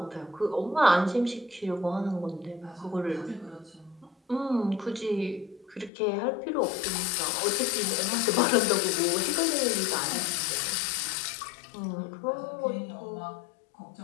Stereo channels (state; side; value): drops out; right; at 5.9 s